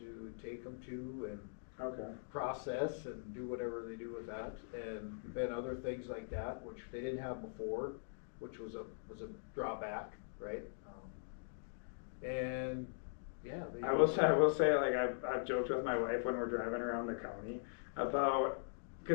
take them to and Okay. process and do whatever they do with that, and other things like that, which they didn't have before, which was a drawback, right? And yeah, I will say, like I've joked with my wife when we're driving around the county about,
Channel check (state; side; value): silent; right; digital silence